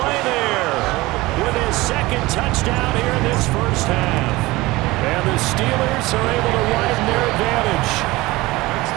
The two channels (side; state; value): left; quieter; 20.2 dB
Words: there with his 2nd touchdown here in this first half. And the Steelers are able to widen their advantage.